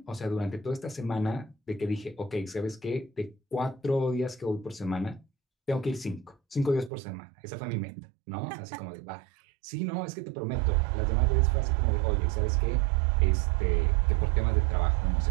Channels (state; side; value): drops out; left; at 6.9 s